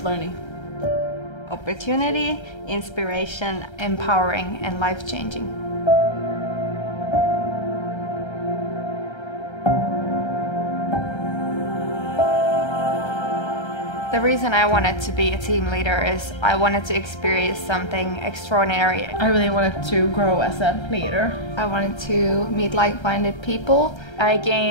Opportunity, inspiration, empowering and life-changing. The reason I wanted to be a team leader is I wanted to experience something extraordinary. I really wanted to grow as a leader. I wanted to meet like-minded people. I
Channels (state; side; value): late; right; 1.3 ms